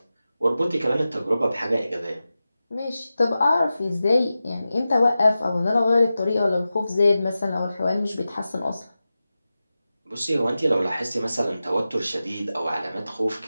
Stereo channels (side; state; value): both; inverted; correlation -0.94